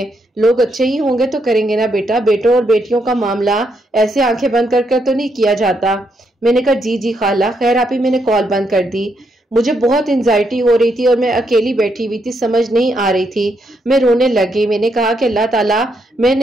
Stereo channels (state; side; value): normal; both; correlation 0.77